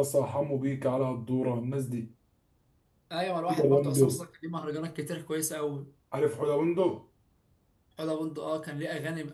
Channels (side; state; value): both; identical; correlation 1.00